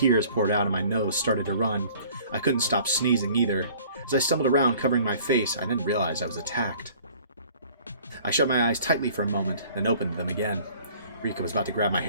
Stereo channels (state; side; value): inverted; both; correlation -0.52